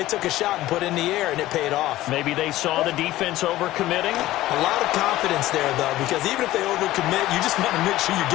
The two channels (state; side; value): quieter; right; 15.9 dB